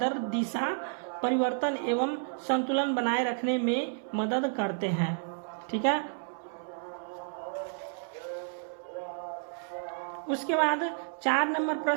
दिशा परिवर्तन एवं संतुलन बनाए रखने में मदद करते हैं। ठीक है, उसके बाद 4 नंबर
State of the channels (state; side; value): silent; left; 57 dB below the other